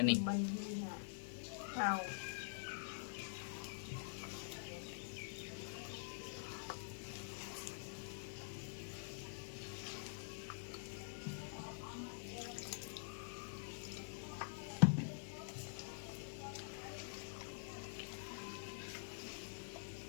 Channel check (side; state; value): right; silent; digital silence